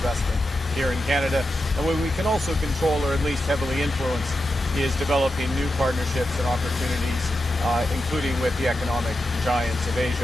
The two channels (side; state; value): both; normal; correlation 0.89